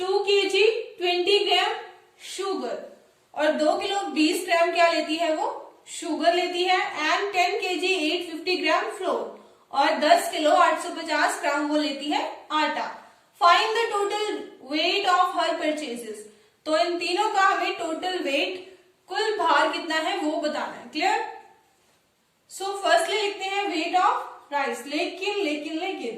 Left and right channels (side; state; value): both; identical; correlation 1.00